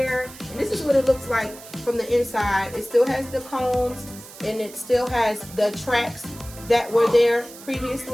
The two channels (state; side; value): noise; right; hiss, 17 dB below the sound